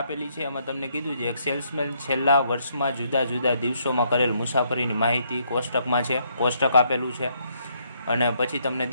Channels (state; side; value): inverted; both; correlation -0.72